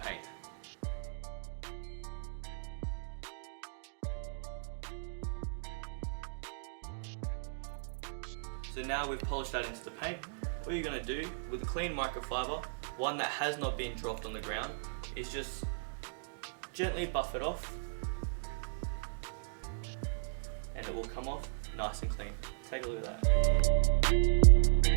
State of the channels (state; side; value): silent; left; digital silence